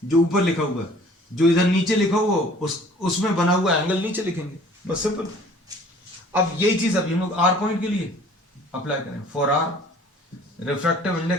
जो ऊपर लिखा हुआ है, जो इधर नीचे लिखा हुआ उसमें बना हुआ एंगल नीचे लिखेंगे, बस सिंपल. अब यही चीज अभी हम लोग R पॉइंट के लिए अप्लाई करें. For R, refractive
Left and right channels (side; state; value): both; normal; correlation 0.51